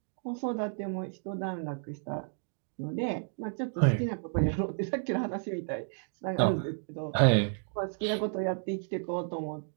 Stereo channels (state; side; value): silent; left; digital silence